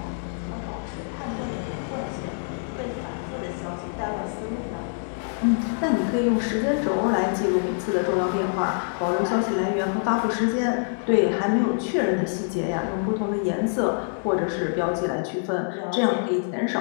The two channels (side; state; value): right; silent; digital silence